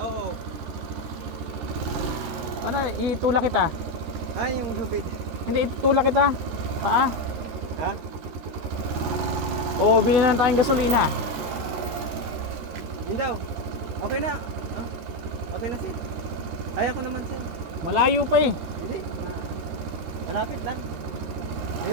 Ano, itulak kita? Ay, yung lubid. Hindi, itulak kita. Paa? Ha? Oo, bilhin na tayong gasolina. Yun daw. Okay na. Okay na sir. Kaya ko naman sir. Malayo pa eh. Hindi. Malapit lang.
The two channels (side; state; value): left; late; 13 ms